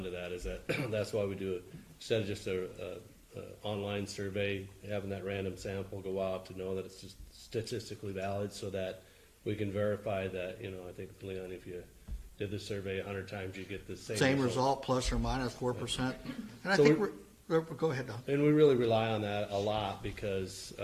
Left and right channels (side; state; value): both; identical; correlation 1.00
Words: to that, is that that's why we do it, instead of just a online survey, having that random sample go out to know that it's just statistically valid, so that we can verify that, I think, Leon, if you did the survey 100 times, you get the same result, plus or minus 4%. And I So think go ahead, Don. And we really rely on that a lot because